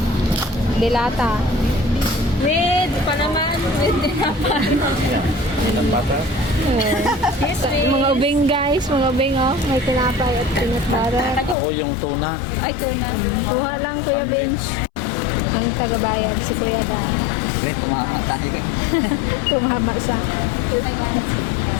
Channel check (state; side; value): drops out; right; at 11.6 s